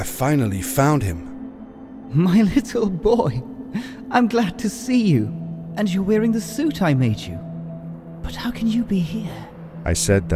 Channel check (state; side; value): identical; both; correlation 1.00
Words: finally found him. My little boy. I'm glad to see you. And you're wearing the suit I made you. But how can you be here? I said